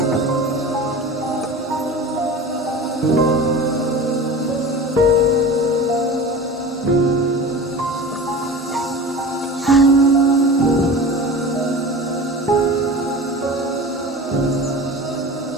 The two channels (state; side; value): normal; both; correlation 0.35